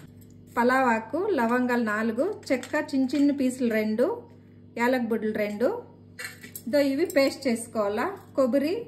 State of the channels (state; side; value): identical; both; correlation 1.00